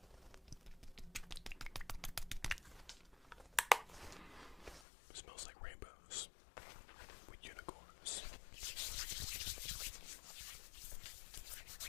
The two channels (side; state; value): right; drops out; at 4.9 s